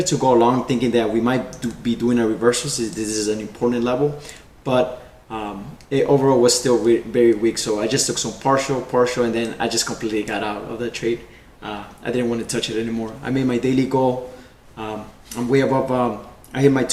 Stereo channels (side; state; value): both; identical; correlation 1.00